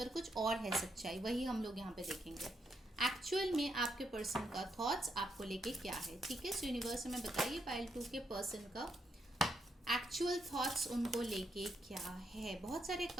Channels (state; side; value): normal; both; correlation 0.78